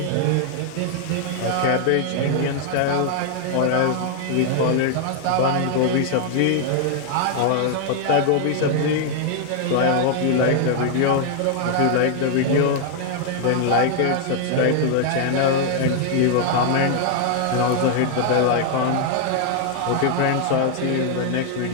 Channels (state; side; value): different; both; correlation 0.00